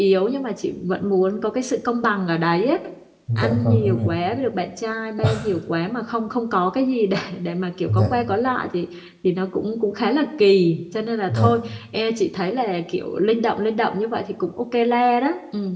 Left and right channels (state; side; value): identical; both; correlation 1.00